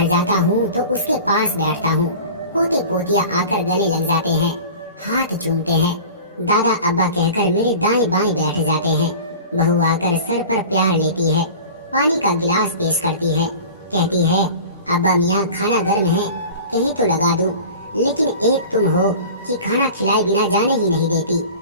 जाता हूं तो उसके पास बैठता हूं। पोते पोतिया आकर गले लग जाते हैं, हाथ चूमते हैं। दादा अब्बा कहकर मेरे दाएं बाएं बैठ जाते हैं। बहू आकर सर पर प्यार लेती है, पानी का गिलास पेश करती है, कहती है, अब्बा मियाँ खाना गर्म है, कहीं तो लगा दूं। लेकिन एक तुम हो कि खाना खिलाए बिना जाने ही नहीं देती।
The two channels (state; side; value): inverted; both; correlation -0.39